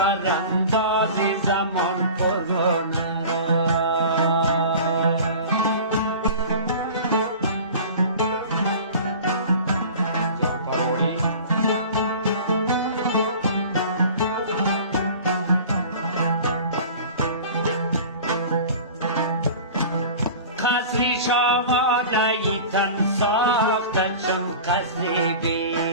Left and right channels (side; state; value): both; inverted; correlation -0.39